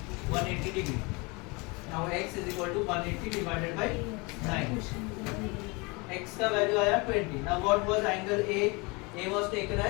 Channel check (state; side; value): quieter; right; 27.6 dB